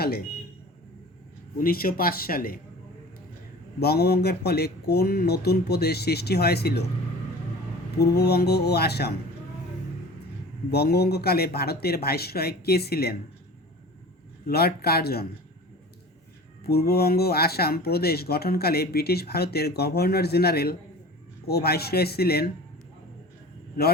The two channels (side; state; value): both; normal; correlation 0.40